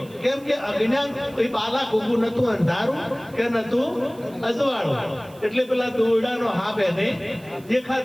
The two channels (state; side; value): noise; right; hiss, 25 dB below the sound